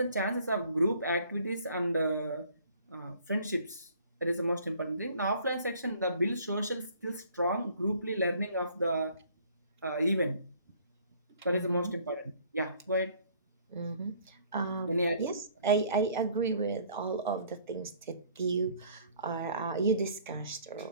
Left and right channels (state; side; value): inverted; both; correlation -0.57